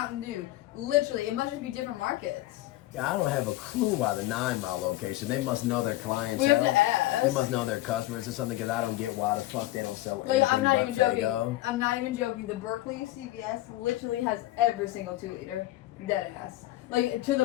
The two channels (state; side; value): quieter; right; 16.6 dB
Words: Dew. Literally, it must just be different markets. Yeah, I don't have a clue why the 9 Mile location. They must know their clientele. We have to ask. They must know their customers or something, because I don't get why the fuck they don't sell Wait, anything I'm not even joking. Faygo. I'm not even joking. The Berkeley CVS literally has every single 2 liter. Dead ass. Like, to